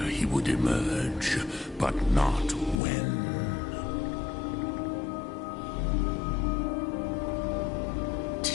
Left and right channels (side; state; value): right; drops out; at 2.8 s